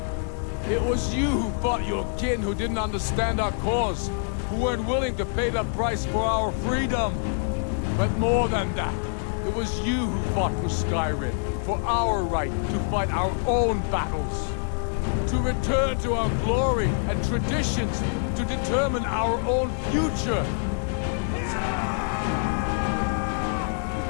It was you who fought your kin who didn't understand our cause, who weren't willing to pay the price for our freedom. But more than that, it was you who fought for Skyrim, for our right to fight our own battles, to return to our glory and traditions, to determine our own future.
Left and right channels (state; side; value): silent; right; digital silence